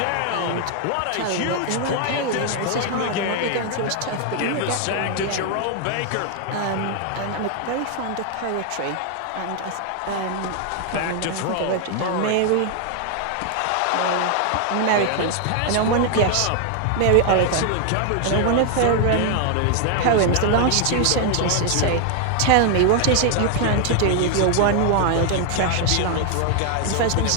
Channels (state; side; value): different; both; correlation 0.00